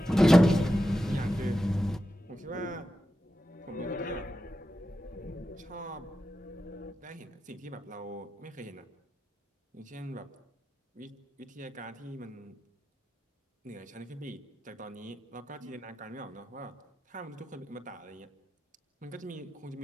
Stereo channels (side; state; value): both; normal; correlation 0.90